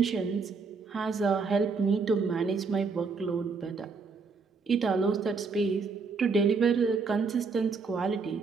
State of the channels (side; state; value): left; quieter; 4.7 dB